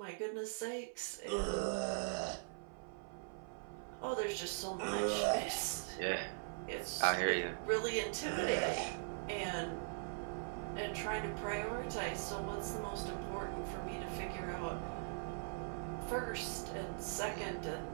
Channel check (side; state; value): left; silent; 50 dB below the other